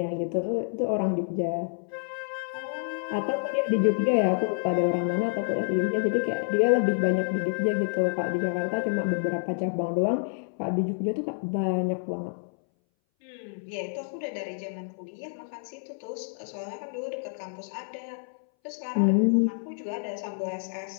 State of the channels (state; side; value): silent; right; 59 dB below the other